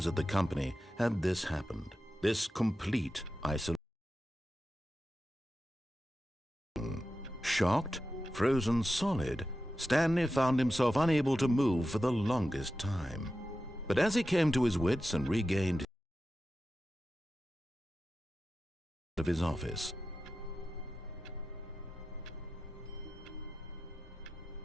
at the company had this happened. This complete isolation. Shocked, frozen solid, Stanley found himself unable to move for the longest time. But as he came to his wits and regained of his office,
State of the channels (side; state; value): both; normal; correlation 0.92